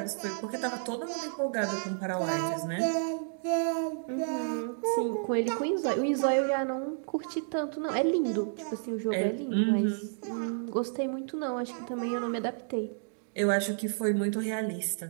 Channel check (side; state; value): left; silent; digital silence